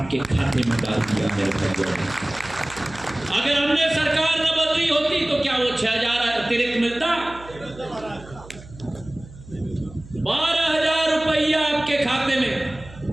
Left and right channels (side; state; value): right; noise; hum, 18 dB below the sound